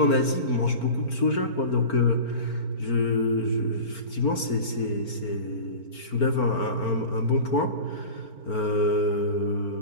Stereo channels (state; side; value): late; right; 4.4 ms